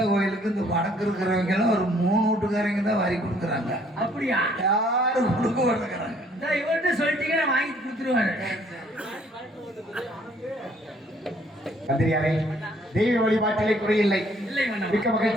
கோயிலுக்கு இந்த வடக்கு இருக்கிறவங்க எல்லாம் ஒரு 3 வீட்டுக்காரங்க தான் வரி கொடுக்குறாங்க. அப்படியா? யாரும் கொடுக்க மாட்டேங்கிறாங்க. இவர்கிட்ட சொல்லிட்டீங்கன்னா வாங்கி கொடுத்துருவாரு. மந்திரியாரே, தெய்வ வழிபாட்டிலே குறையில்லை. மிக்க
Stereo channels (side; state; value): both; normal; correlation 0.62